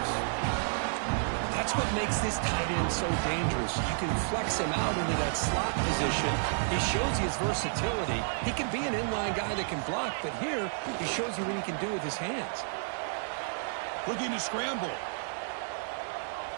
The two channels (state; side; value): silent; left; digital silence